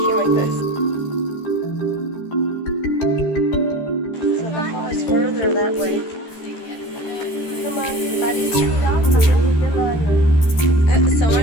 like this. So the fall is further that way. Come on, buddy's chewed off. So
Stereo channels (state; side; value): late; right; 14 ms